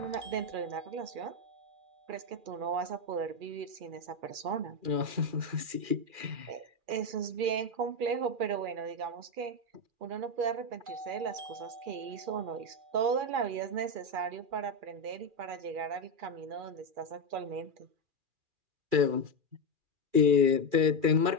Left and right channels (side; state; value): left; late; 2.4 ms